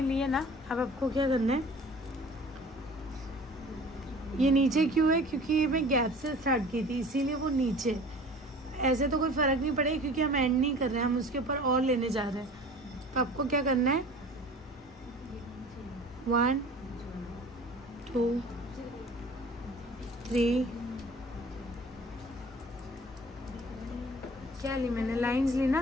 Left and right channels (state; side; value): normal; both; correlation 0.44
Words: लिए ना। अब आपको क्या करना है, ये नीचे क्यों है, क्योंकि ये मैं गैप से स्टार्ट की थी, इसीलिए वो नीचे। ऐसे तो कोई फर्क नहीं पड़ेगा क्योंकि हम एंड नहीं कर रहे हैं, हम उसके ऊपर और लेने जा रहे हैं। तो आपको क्या करना है, 1 2 3, क्या ली मैंने, लाइंस ली